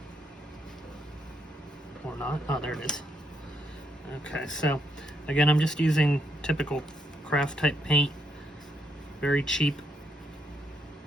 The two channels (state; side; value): normal; both; correlation 0.77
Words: Or not. Oh, there it is. Okay, so again, I'm just using typical craft type paint. Very cheap.